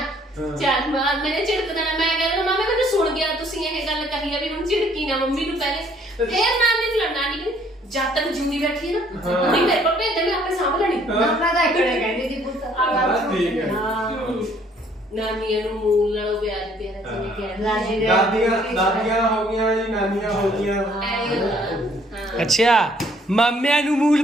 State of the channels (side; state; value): both; normal; correlation 0.62